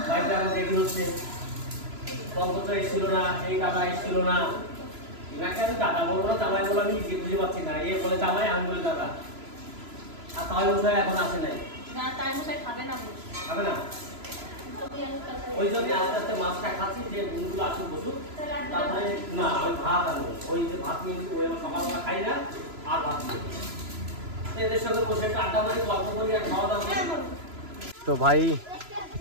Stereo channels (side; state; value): left; late; 3.0 ms